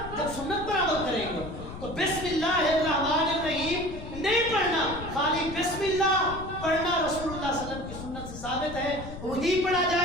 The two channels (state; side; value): noise; left; rumble, 11 dB below the sound